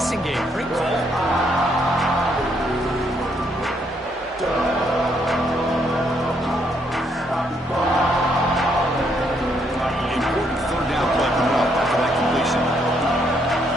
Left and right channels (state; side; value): normal; both; correlation 0.72